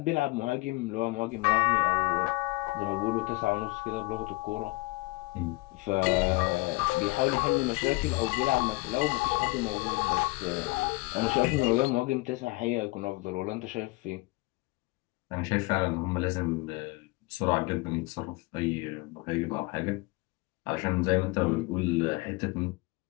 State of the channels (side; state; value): right; quieter; 23.1 dB